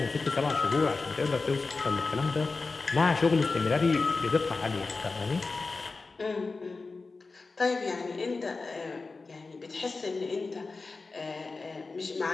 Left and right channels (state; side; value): quieter; right; 3.9 dB